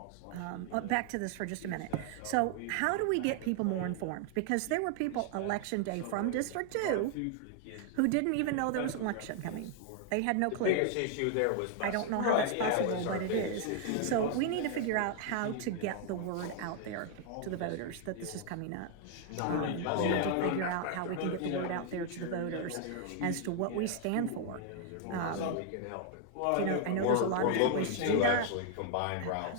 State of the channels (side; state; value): both; different; correlation 0.00